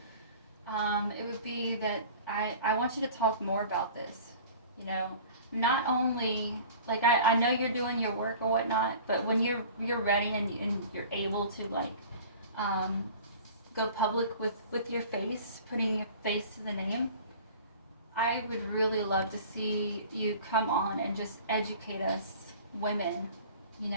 it would be that I want you to talk more about this. Not only, like, I know you're doing your work or whatnot, but when you're ready and you're able to, like, go public with your face, putting your face to the name, I would really love to see you come on and just educate us women.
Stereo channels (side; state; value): both; inverted; correlation -0.43